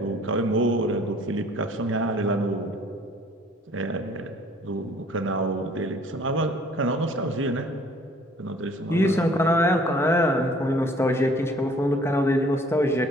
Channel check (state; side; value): normal; both; correlation 0.55